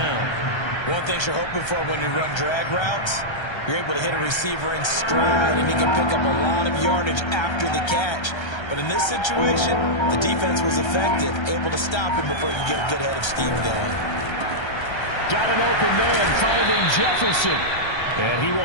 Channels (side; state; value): right; late; 1.3 ms